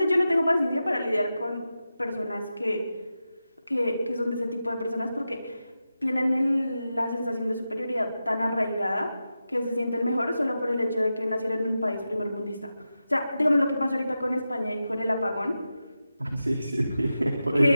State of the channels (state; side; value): inverted; both; correlation -0.91